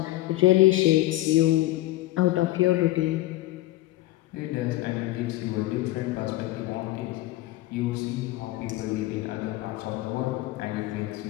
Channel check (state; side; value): quieter; right; 16.8 dB